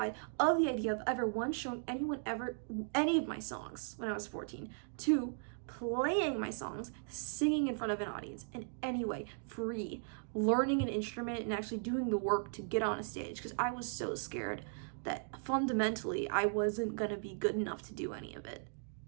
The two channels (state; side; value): silent; left; digital silence